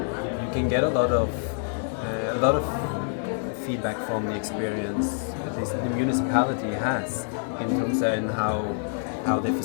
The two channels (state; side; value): silent; right; 61 dB below the other